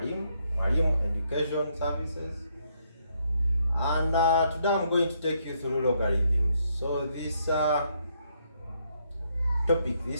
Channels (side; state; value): both; inverted; correlation -0.74